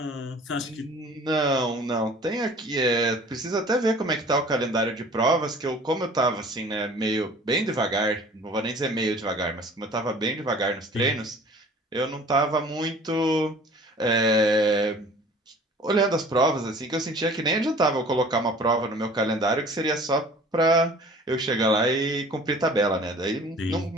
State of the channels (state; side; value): normal; both; correlation 0.48